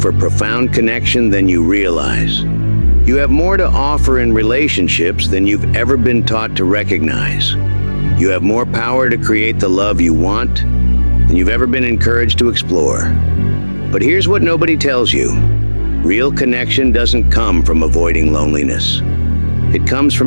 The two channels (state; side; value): inverted; both; correlation -1.00